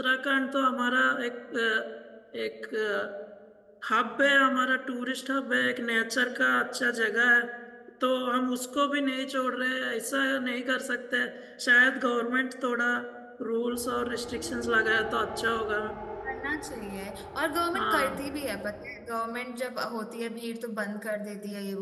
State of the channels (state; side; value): identical; both; correlation 1.00